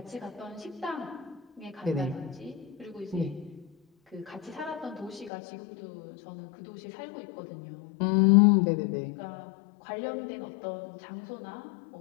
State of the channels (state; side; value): drops out; right; at 5.3 s